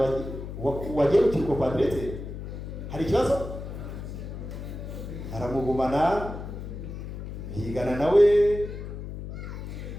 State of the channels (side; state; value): left; noise; hum, 8 dB below the sound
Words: wagiye mu kirugo kwa diregiteri, hari ikibazo? Aramugumana, bigana nawe,